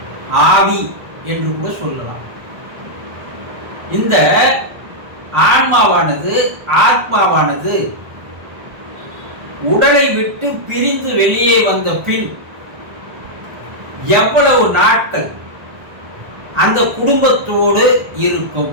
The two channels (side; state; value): left; late; 1.4 ms